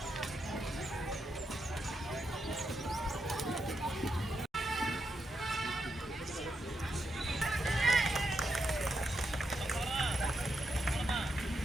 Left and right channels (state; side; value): normal; both; correlation 0.83